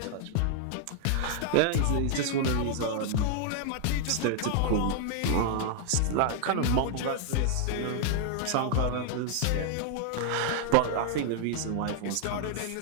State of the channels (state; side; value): different; both; correlation -0.01